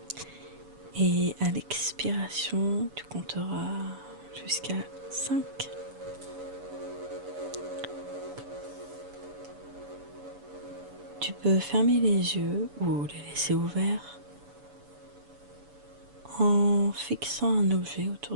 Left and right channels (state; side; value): late; left; 7.0 ms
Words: et à l'expiration, tu compteras jusqu'à 5. Tu peux fermer les yeux ou les laisser ouverts en fixant un objet